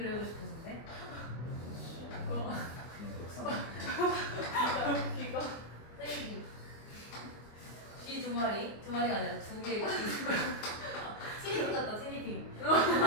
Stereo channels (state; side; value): late; right; 24 ms